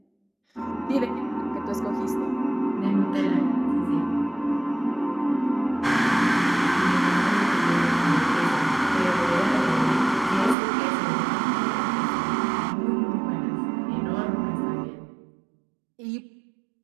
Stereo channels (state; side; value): drops out; left; at 10.6 s